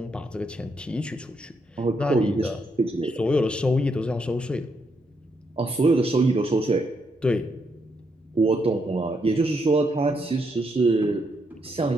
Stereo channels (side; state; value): both; normal; correlation 0.78